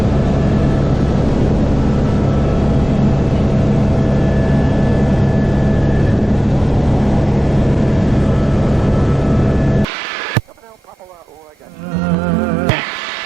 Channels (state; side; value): normal; both; correlation 0.95